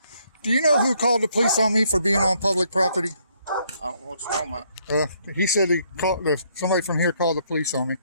Do you know who called the police on me for being on public property? I don't know what you're talking about. He said somebody from here called the police on me.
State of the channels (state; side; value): inverted; both; correlation -0.70